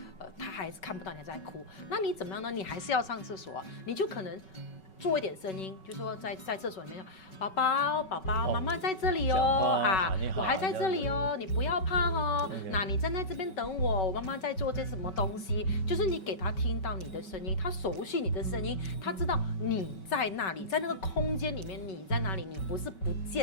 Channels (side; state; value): right; late; 5.3 ms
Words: 她还是看不到你在哭，那你怎么样呢？你还是要上厕所啊，你就可能做一点声音，就说在厕所里面，宝宝，妈妈在这里哦，我还在这里哦，你不要怕哦。那你站在这边等我，我妈妈在做些什么东西？就是你给他听到你的声音，他熟悉你的声音，他知道你在那里，在那个空间里面你在哪里，你不是不